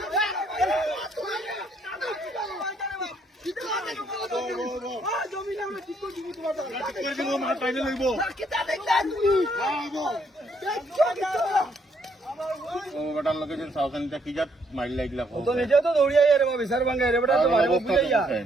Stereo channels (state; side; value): normal; both; correlation 0.70